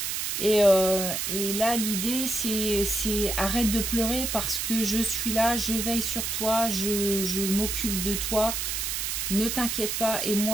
Et là, l'idée, c'est arrête de pleurer parce que je suis là, je veille sur toi, je m'occupe de toi. Ne t'inquiète pas, et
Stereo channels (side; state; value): right; noise; hiss, 2 dB below the sound